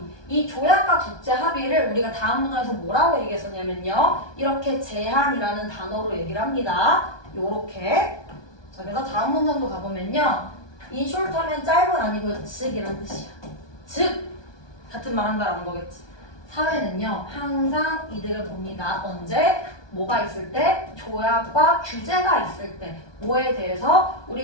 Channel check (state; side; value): late; right; 1.2 ms